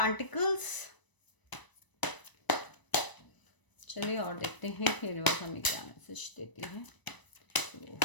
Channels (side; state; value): right; late; 1.0 ms